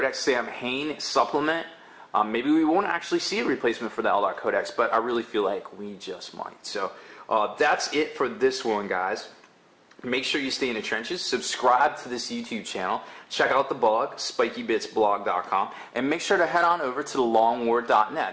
Sam Hain supplement. Maybe we won't actually see a replacement for the Eldar Codex, but I really feel like we just might. So that's it for this one, guys. Make sure you stay in the trenches. Subscribe to this YouTube channel. Check out the blog, spikybitsblog.com, and make sure to head on over to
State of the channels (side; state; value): both; identical; correlation 1.00